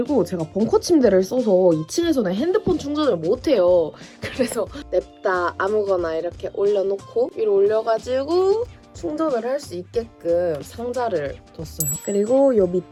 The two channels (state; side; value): identical; both; correlation 1.00